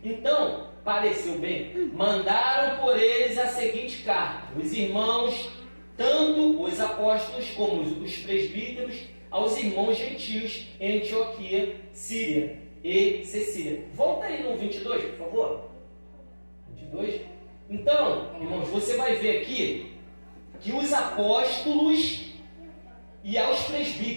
Então, pareceu bem, mandaram por eles a seguinte carta: os irmãos, tanto os apóstolos como os presbíteros, aos irmãos gentios em Antioquia, Síria e Cecília. Volta aí no 22, por favor. 22. Então, irmãos, você vai ver aqui que os apóstolos e aos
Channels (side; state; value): both; inverted; correlation -1.00